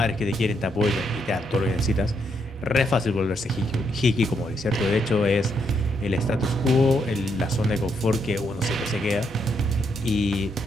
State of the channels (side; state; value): both; normal; correlation 0.77